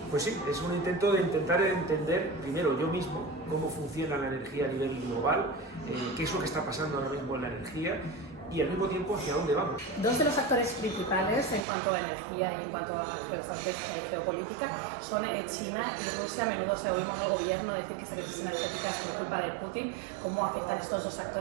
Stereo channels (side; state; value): left; drops out; at 11.7 s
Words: Pues sí, es un intento de intentar entender primero yo mismo cómo funciona la energía a nivel global, qué es lo que está pasando ahora mismo en la energía y al mismo tiempo hacia dónde vamos. Dos de los actores principales en cuanto a energía y en cuanto a geoestrategia y geopolítica son China y Rusia. A menudo se oímos al gobierno decir que esta crisis energética es por culpa de Putin. ¿Cómo afectan estos dos